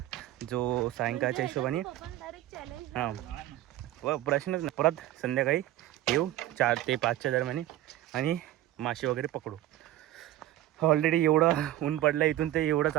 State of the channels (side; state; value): left; quieter; 14.3 dB